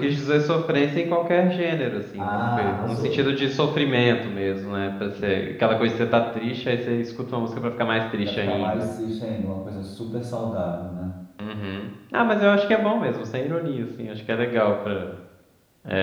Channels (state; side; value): identical; both; correlation 1.00